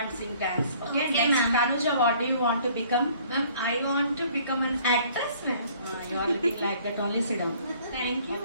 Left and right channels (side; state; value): both; inverted; correlation -0.56